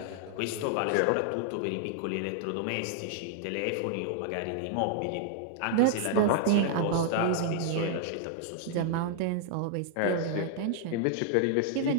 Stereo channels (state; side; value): different; both; correlation 0.00